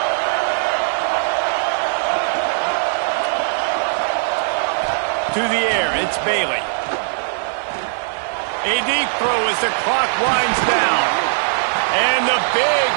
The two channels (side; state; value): left; silent; 66 dB below the other